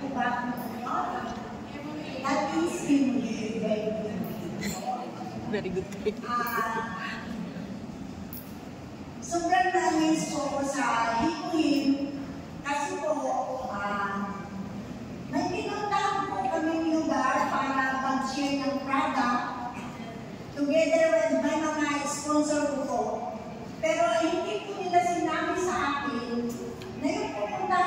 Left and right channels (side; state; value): both; identical; correlation 1.00